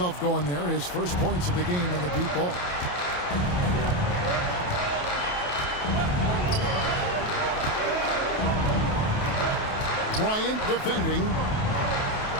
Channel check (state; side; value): late; right; 28 ms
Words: going there. His first points of the game on the deep ball. Bryant defending.